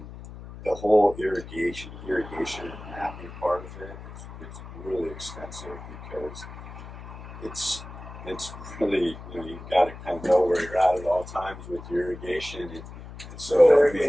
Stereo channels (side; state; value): left; noise; hum, 13 dB below the sound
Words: whole irrigation and mapping part of it is really extensive, because it's really, you've got to kind of know where you're at all times with your irrigation, and so